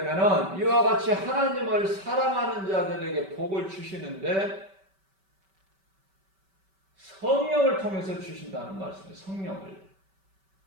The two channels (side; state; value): left; late; 5.2 ms